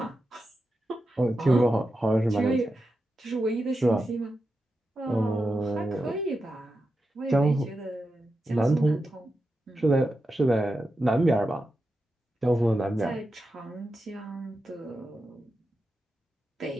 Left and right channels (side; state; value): both; normal; correlation 0.89